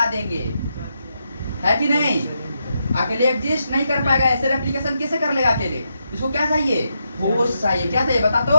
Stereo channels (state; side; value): inverted; both; correlation -0.82